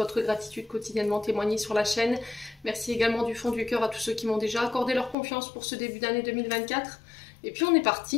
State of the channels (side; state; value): right; drops out; at 5.2 s